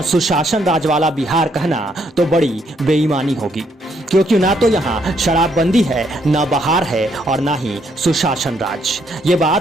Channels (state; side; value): normal; both; correlation 0.72